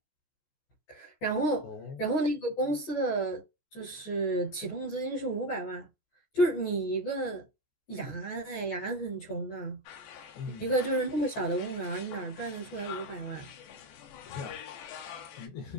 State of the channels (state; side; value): late; right; 14 ms